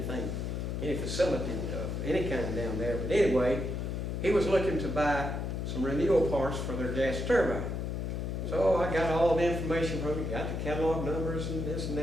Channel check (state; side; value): noise; left; hum, 3 dB below the sound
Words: any facility of any kind down there. But anyway, he was looking to buy some renewal parts for their gas turbine. So I got all the information from him, got the catalog numbers and this and